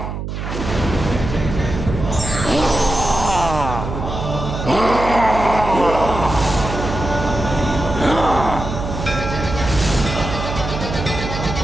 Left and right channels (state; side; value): noise; right; hum, 6 dB below the sound